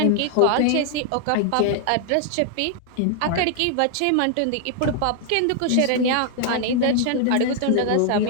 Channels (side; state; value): both; different; correlation 0.00